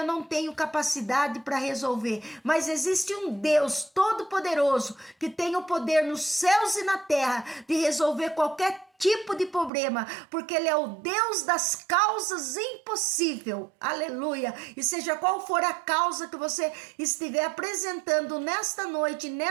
não tenho capacidade para resolver, mas existe um Deus todo-poderoso que tem o poder nos céus e na terra de resolver qualquer tipo de problema, porque ele é o Deus das causas impossíveis, aleluia, e seja qual for a causa que você estiver apresentando nesta noite,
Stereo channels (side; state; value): left; drops out; at 9.7 s